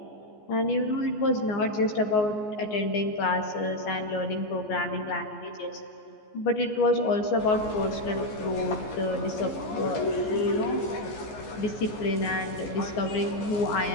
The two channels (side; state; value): right; late; 14 ms